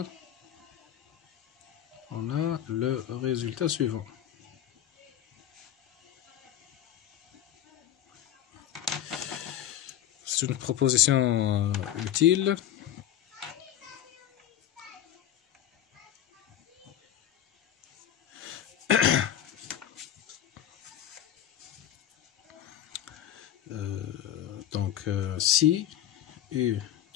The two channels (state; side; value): quieter; right; 11.2 dB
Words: on a le résultat suivant. C'est une proposition utile. Donc, si U